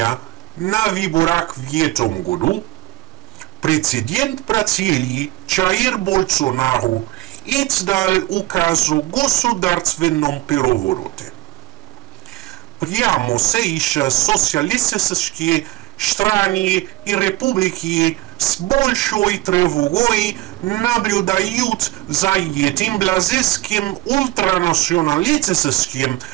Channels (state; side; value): quieter; left; 17.9 dB